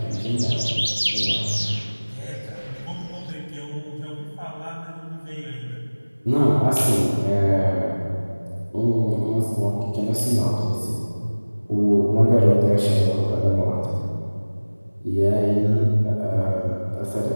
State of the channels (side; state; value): both; inverted; correlation -1.00